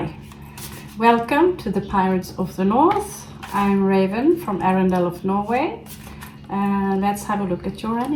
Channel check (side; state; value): both; identical; correlation 1.00